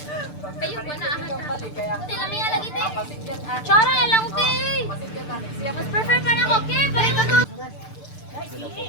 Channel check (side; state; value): right; late; 6.8 ms